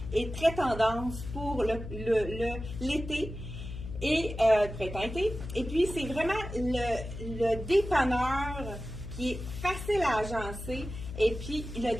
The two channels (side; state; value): left; noise; hum, 9 dB below the sound